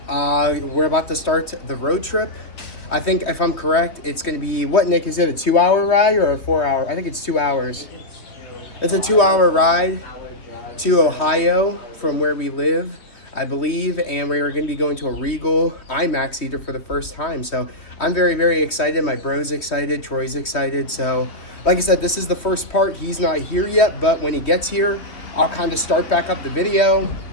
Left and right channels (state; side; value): late; right; 3.1 ms